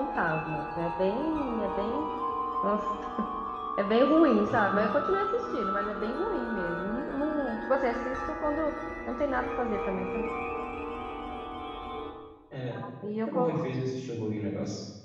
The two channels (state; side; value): identical; both; correlation 1.00